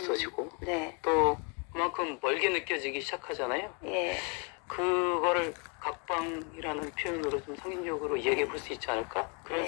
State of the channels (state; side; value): quieter; right; 34.3 dB